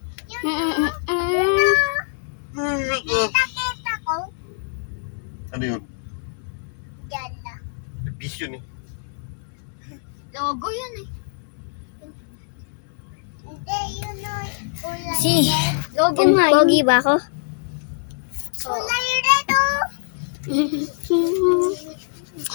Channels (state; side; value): silent; right; 63 dB below the other